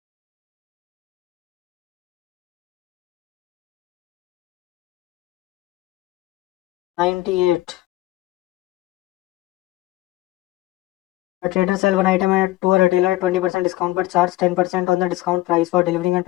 98। A trader sell one item to a retailer at 20% discount but charge 10% on the discount price for delivering and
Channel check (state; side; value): quieter; right; 17.0 dB